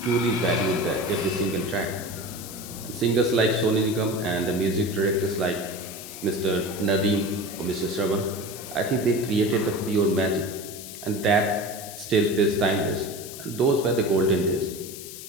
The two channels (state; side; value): noise; left; hiss, 12 dB below the sound